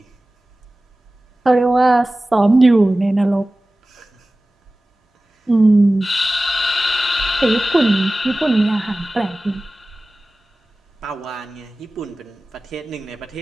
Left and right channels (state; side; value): normal; both; correlation 0.97